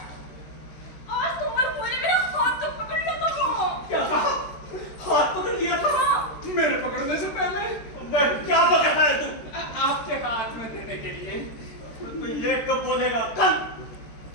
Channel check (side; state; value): right; late; 13 ms